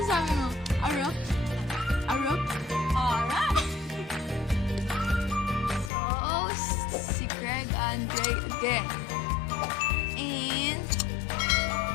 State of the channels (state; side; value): drops out; right; at 5.9 s